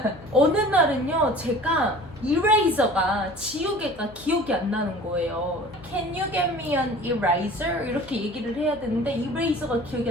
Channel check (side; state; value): left; noise; hum, 21 dB below the sound